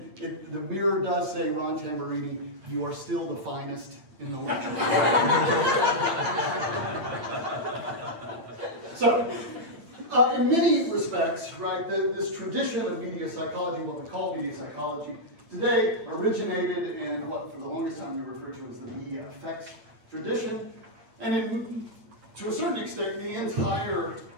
the mirror does say, Ron Tamburini, you are still the finest in the land. So, in many respects, right, this tradition of media psychology, what we call media psychology, today originated in what for the longest time we refer to as the media effects tradition. And to a certain extent, the entire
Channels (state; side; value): late; left; 8.8 ms